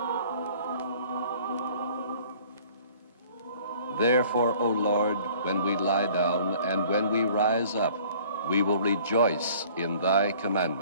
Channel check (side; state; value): both; inverted; correlation -0.53